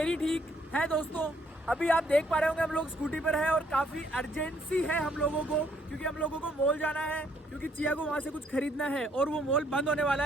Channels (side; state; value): both; normal; correlation 0.68